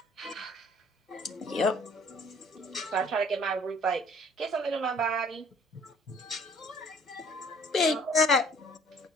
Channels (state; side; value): normal; both; correlation 0.56